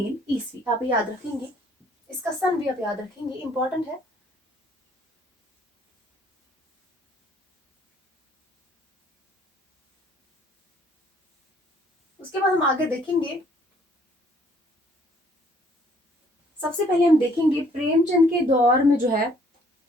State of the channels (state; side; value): normal; both; correlation 0.61